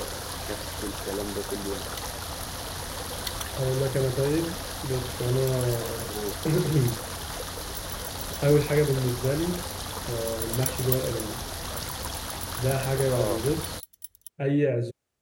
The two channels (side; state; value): both; identical; correlation 1.00